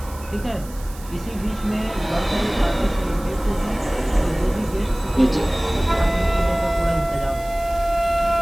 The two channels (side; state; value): right; noise; hiss, 19 dB below the sound